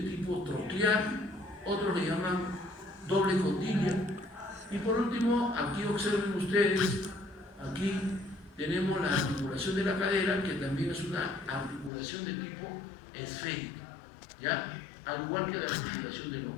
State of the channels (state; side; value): drops out; right; at 11.9 s